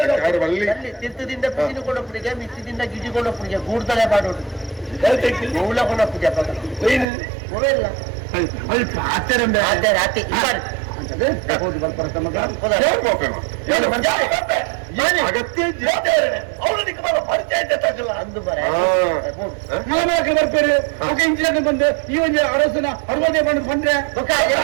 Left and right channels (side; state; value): left; drops out; at 7.1 s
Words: ತಿತ್ತದಿಂದ ಪಿಜಿನ ಕೊಡಪ್ಪನಿಗೆ ಮಿತ್ತದಿಂದ ಗಿಡಿ ಕೊಡಪ್ಪನಿಗೆ ಗೂಡ್ತಲೆ ಮಾಡೋದು ಮೂಲ ಕೊಡಪ್ಪಿಗೆ ಇಲ್ಲ ರಾತ್ರಿ ಹೌದು ಬರ್ಬರ್ತ ಮಗ ಅಗತ್ಯ ಅಂದು ಬರ ಬರ್ತಾರೆ ಇಂಚಿನ ಬಂದು ಈ ಒಂದು ಅರಸನ 60 ಬಂದ್ರೆ